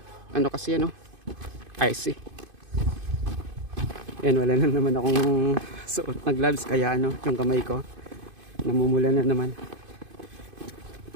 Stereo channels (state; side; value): late; left; 2.5 ms